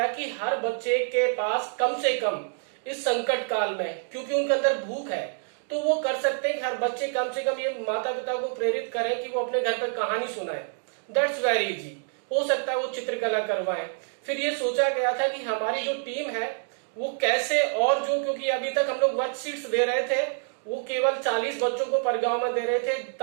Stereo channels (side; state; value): left; silent; 56 dB below the other